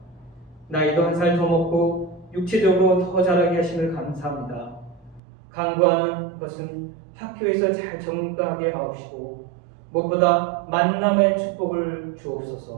나이도 한 살 더 먹고 육체적으로 더 자라게 하심을 감사합니다. 간구하는 것은 학교에서 잘 적응하게 하옵시고 무엇보다 만남의 축복을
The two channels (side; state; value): left; drops out; at 5.2 s